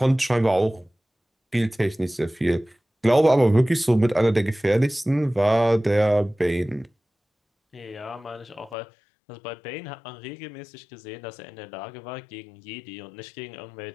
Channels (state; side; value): drops out; right; at 8.8 s